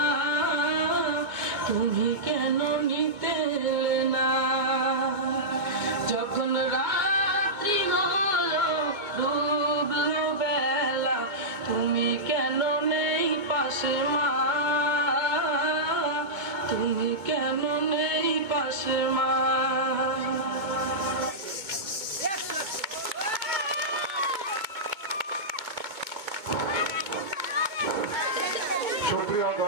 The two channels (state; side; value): late; left; 2.2 ms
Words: তুমি কেন নিতে এলে না। যখন রাত্রি হলো ডুবলো বেলা, তুমি কেন নেই পাশে মা, তুমি কেন নেই পাশে মা। সুপ্রিয়